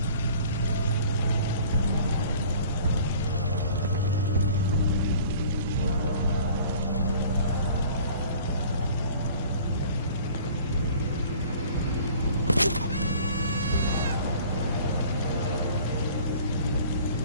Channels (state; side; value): inverted; both; correlation -0.49